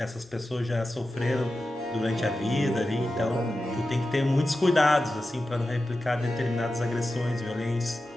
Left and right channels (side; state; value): both; normal; correlation 0.92